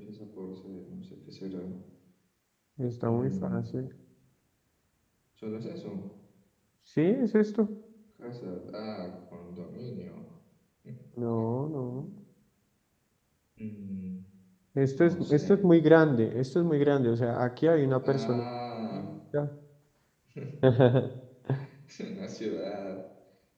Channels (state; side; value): identical; both; correlation 1.00